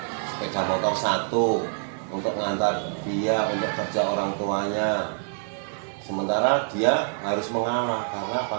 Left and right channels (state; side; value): silent; left; digital silence